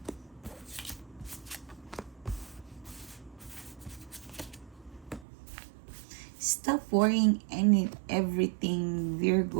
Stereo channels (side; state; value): left; drops out; at 5.2 s